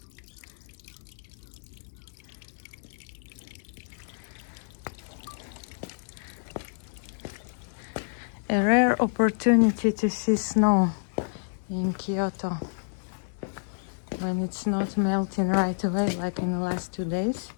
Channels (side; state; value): right; silent; digital silence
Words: A rare opportunity to see snow in Kyoto when it's not melting right away like in the last 2 days.